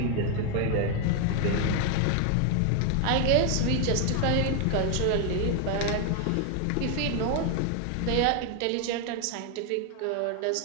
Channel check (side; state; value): both; different; correlation 0.01